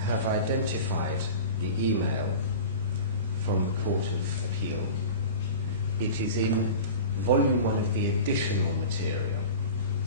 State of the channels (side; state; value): both; inverted; correlation -0.34